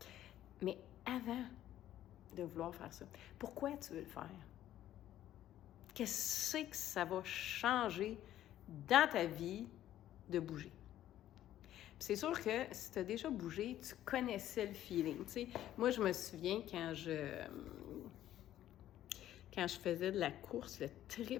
Mais avant de vouloir faire ça, pourquoi tu veux le faire? Qu'est-ce que ça va changer dans ta vie de bouger? C'est sûr que si tu as déjà bougé, tu connaissais le feeling. Tu sais, moi, je me souviens quand je faisais de la course, le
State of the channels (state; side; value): quieter; right; 12.6 dB